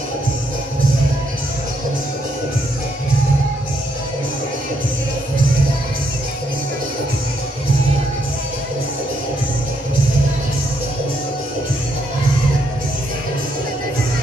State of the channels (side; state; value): both; normal; correlation 0.75